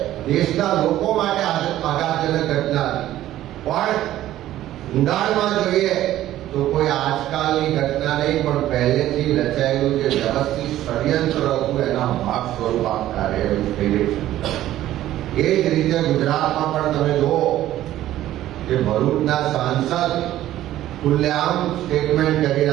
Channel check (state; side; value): quieter; left; 13.7 dB